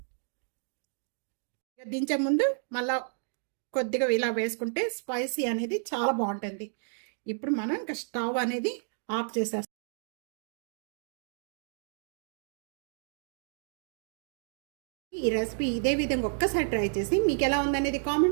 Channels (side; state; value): left; silent; digital silence